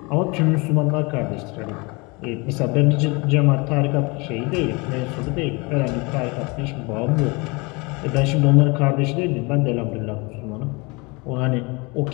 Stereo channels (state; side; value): quieter; right; 27.4 dB